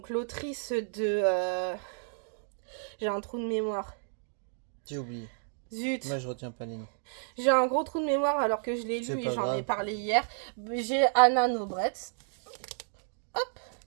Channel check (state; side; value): silent; left; digital silence